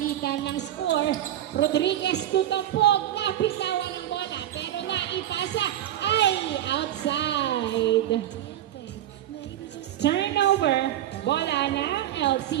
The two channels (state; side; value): quieter; left; 12.2 dB